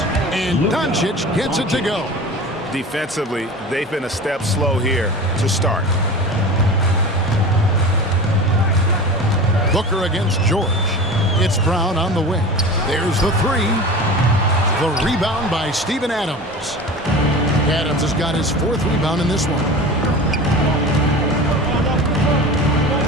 And Doncic gets it to go. Defensively, they've been a step slow here to start. Booker against George. It's Brown on the wing. There's the three. The rebound by Steven Adams. Adams has got his 4th rebound in this one.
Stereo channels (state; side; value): normal; both; correlation 0.34